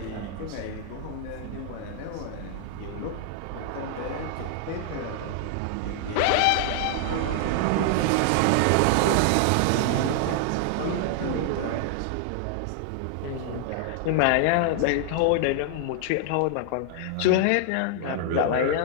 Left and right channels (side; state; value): both; different; correlation 0.00